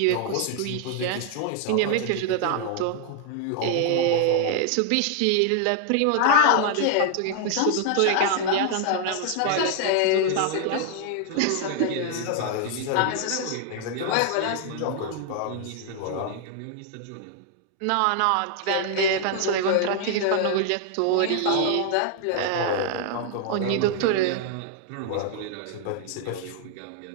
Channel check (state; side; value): different; both; correlation 0.00